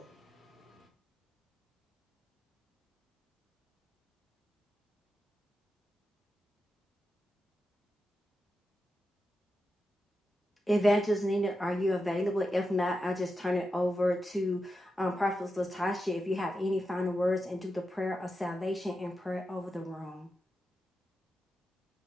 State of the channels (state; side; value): normal; both; correlation 0.88